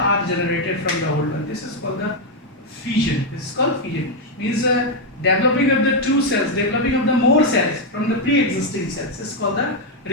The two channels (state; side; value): normal; both; correlation 0.02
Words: are generated from the old one. This is called the fission. This is called fission. Means developing of the two cells, developing of the more cells from the pre-existing cells. This is called the